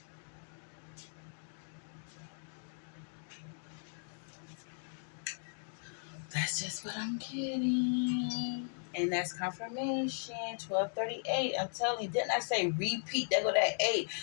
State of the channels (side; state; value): right; silent; digital silence